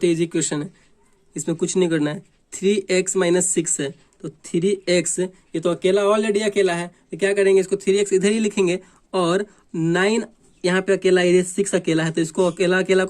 ही इजी इक्वेशन है। इसमें कुछ नहीं करना है। 3x - 6 है, तो 3x ये तो अकेला ऑलरेडी अकेला है, तो क्या करेंगे, इसको 3x इधर ही लिखेंगे, और 9 यहाँ पे अकेला, ये 6 अकेला है, तो इसको अकेला अकेला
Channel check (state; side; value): identical; both; correlation 1.00